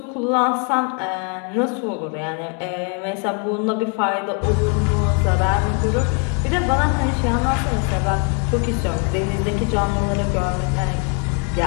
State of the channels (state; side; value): quieter; right; 39.2 dB